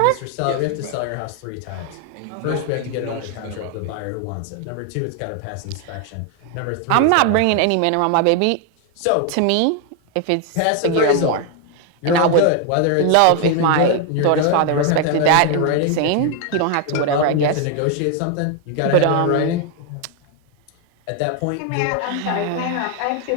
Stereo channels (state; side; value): different; both; correlation 0.01